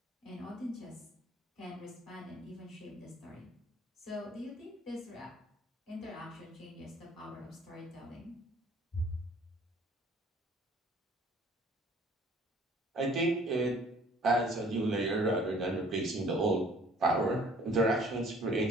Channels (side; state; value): both; normal; correlation 0.55